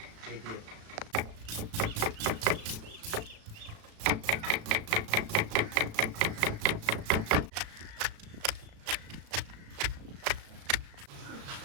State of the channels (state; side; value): late; left; 36 ms